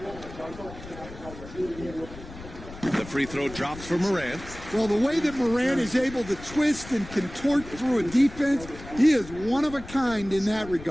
The free throw drops for Morant. Well, the way that Morant is able to twist and contort through a defense, he is one of a kind in that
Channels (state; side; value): noise; left; rumble, 15 dB below the sound